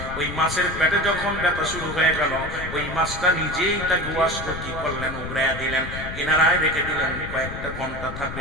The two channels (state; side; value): noise; left; rumble, 9 dB below the sound